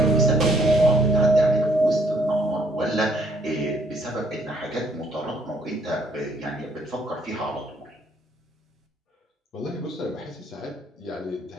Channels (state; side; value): normal; both; correlation 0.66